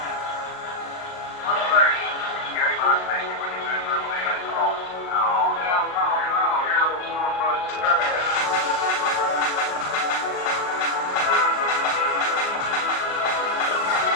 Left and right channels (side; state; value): right; late; 38 ms